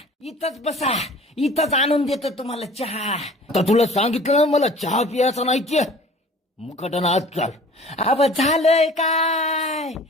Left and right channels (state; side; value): normal; both; correlation 0.46